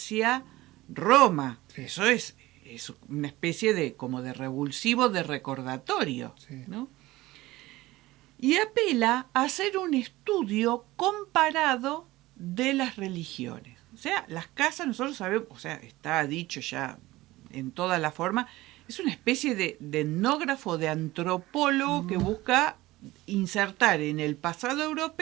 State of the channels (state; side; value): quieter; left; 18.4 dB